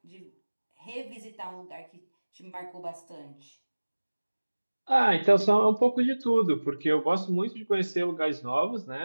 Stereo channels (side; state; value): both; inverted; correlation -1.00